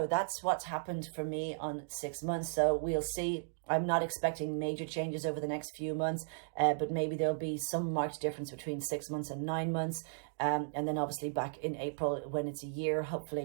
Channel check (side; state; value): left; silent; digital silence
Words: That's what's happened for me on 6 months. So we'll see. I'm not expecting major changes over the next few months, but maybe there'll be some marked difference between 6 months and 9 months. And then obviously back in April, when it's a year,